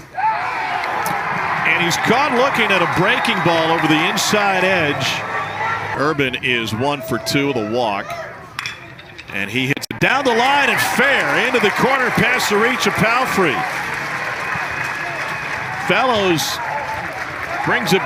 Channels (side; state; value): both; identical; correlation 1.00